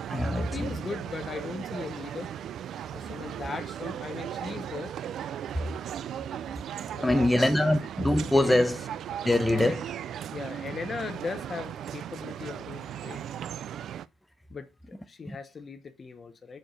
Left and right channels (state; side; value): normal; both; correlation 0.88